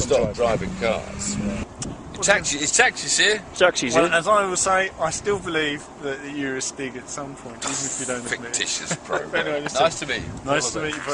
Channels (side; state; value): both; identical; correlation 1.00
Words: driving cars. Yeah. Is taxis here? Taxis here. Well, as I will say, I still believe that you're a Stig at some point, even if you don't admit it. Fictitious program. Anyway, nice to meet you. Nice to meet you